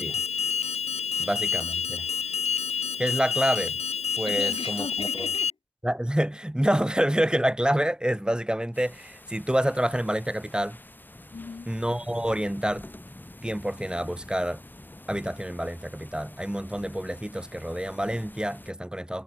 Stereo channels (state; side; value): normal; both; correlation 0.86